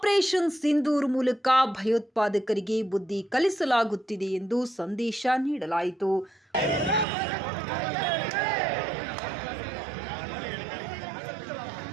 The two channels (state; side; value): drops out; left; at 7.1 s